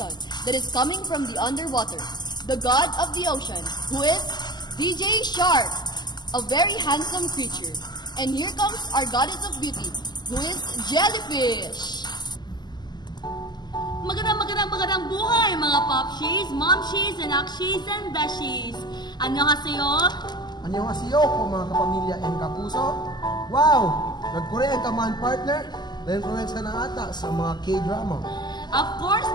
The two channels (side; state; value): right; late; 0.21 ms